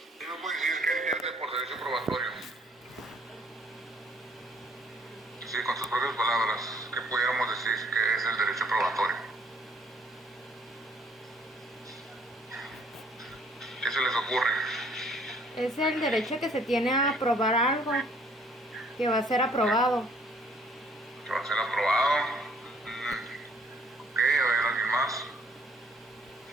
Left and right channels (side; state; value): both; normal; correlation 0.61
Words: ¿Qué me puede decir qué entiende por derecho probatorio? Sí, con sus propias palabras, ¿qué pudiéramos decir que es el derecho probatorio? ¿Qué se les ocurre? Es el derecho que se tiene a aprobar algo que va a ser aprobado. ¿Que va a ser aprobado? Ok, a ver, ¿alguien más?